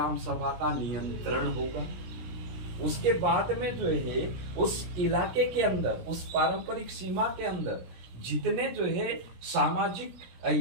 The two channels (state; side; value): late; left; 17 ms